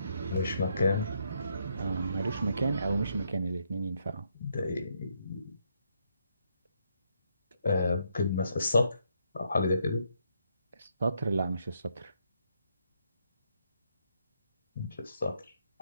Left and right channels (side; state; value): both; inverted; correlation -0.75